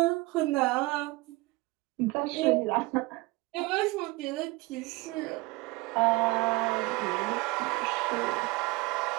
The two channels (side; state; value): left; quieter; 22.9 dB